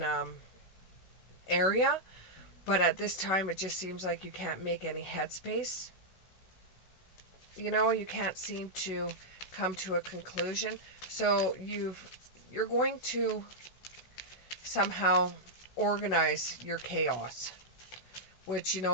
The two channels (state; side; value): late; right; 16 ms